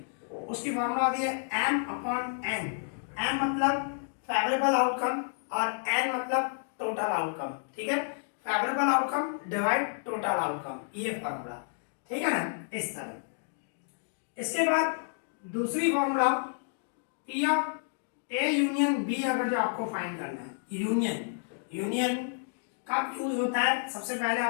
उसकी फार्मूला आती है m/n। m मतलब फेवरेबल आउटकम और n मतलब टोटल आउटकम। ठीक है, favourable outcome divide total outcome, ये फॉर्मूला। ठीक है ना, इस तरह। इसके बाद दूसरी formula P of A union B, अगर जो आपको फाइंड करना है, यूनियन कब यूज होता है, सबसे पहले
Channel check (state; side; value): silent; right; digital silence